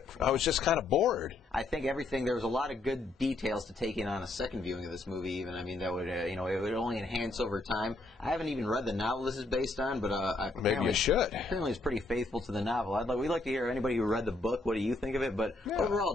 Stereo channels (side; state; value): right; quieter; 3.1 dB